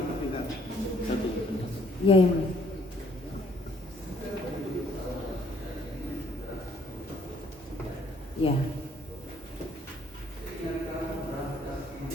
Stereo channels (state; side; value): normal; both; correlation 0.64